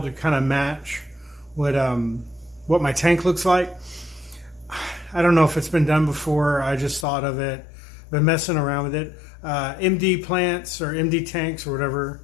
to kind of match what my tank looks like. I don't know if it's been done before. I just thought of it, been messing around with it. MD plants or MD tanks or whatever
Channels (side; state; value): right; drops out; at 7.1 s